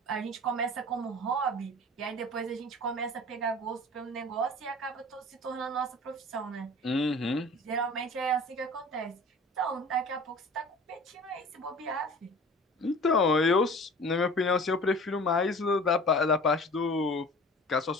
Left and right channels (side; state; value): both; normal; correlation 0.43